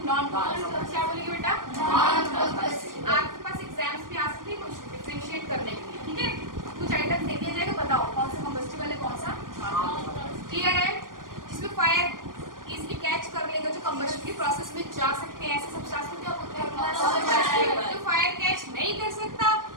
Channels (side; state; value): left; late; 0.90 ms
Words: Non combustible. क्या बोलेंगे बेटा? Non combustible. आपके पास एग्जाम्स में आ सकती है कुछ डिफरेंशिएट करने के लिए, ठीक है? कुछ आइटम्स दे दिया जाएगा, बताओ कौन सा कंबस्टिबल है कौन सा क्लियर है? जिसमें फायर इजीली कैच कर लेगा, जो कंबशन की प्रोसेस में जा सकते हैं, ऐसे सब्सटेंस को क्या बोलते हैं? जो फायर कैच नहीं कर सकता